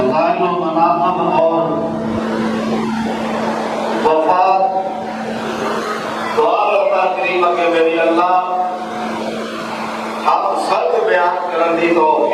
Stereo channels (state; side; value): identical; both; correlation 1.00